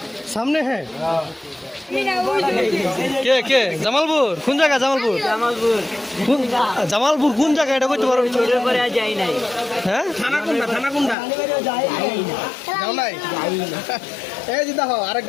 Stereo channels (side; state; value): right; drops out; at 11.2 s